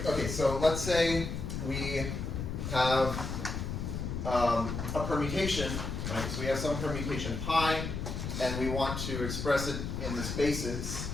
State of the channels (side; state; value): left; noise; rumble, 4 dB below the sound